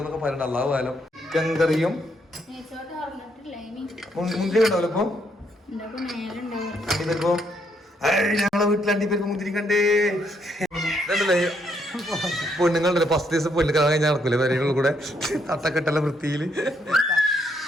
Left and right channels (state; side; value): normal; both; correlation 0.74